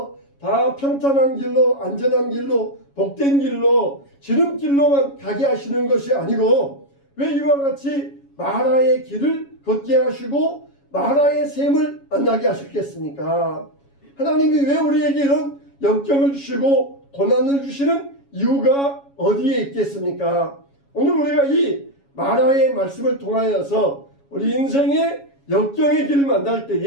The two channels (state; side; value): late; right; 7.2 ms